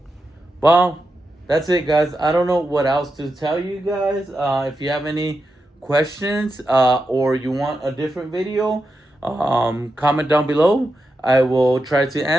well, that's it, guys. I don't know what else to tell you guys. If you have any questions or you want a different video, comment down below. I will try to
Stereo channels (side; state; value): both; normal; correlation 0.88